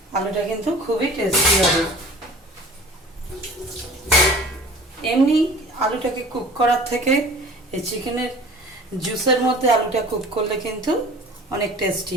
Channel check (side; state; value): both; normal; correlation 0.44